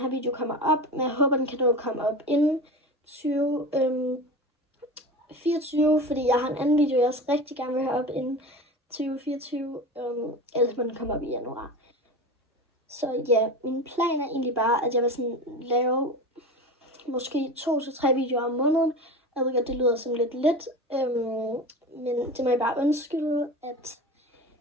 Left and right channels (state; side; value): normal; both; correlation 0.29